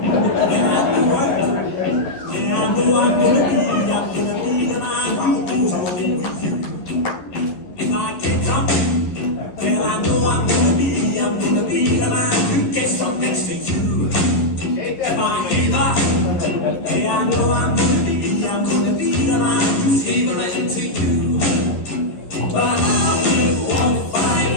I go out, yeah, I know I'm gonna be the man who goes all in with you. If I get drunk, well, I know I'm gonna be the man who gets up next to you. If I get up, yeah, I know I'm gonna be the man who's favoring to you. But I will walk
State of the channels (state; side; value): late; right; 11 ms